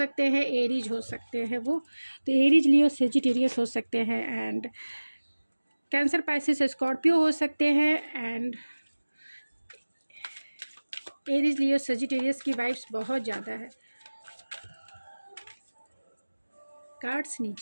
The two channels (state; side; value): inverted; both; correlation -1.00